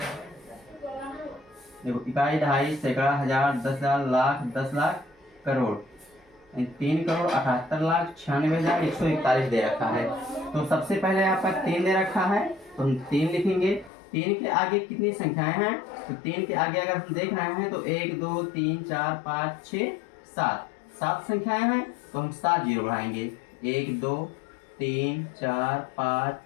देखो, इकाई, दहाई, सैकड़ा, हजार, 10,000, लाख, 10 लाख, करोड़, 3 करोड़ 78 लाख 96,141 दे रखा है। तो सबसे पहले आपका 3 दे रखा है तो हम 3 लिखेंगे। 3 के आगे कितनी संख्याएं हैं, तो 3 के आगे अगर हम देख रहे हैं तो 1 2 3 4 5 6 7, 7 संख्याएं हैं तो हम 7 जीरो बढ़ाएंगे, 1 2 3 4 5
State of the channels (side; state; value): right; drops out; at 13.9 s